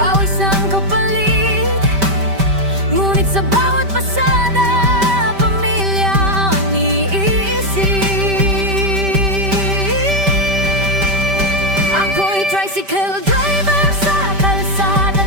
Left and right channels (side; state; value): left; late; 5.1 ms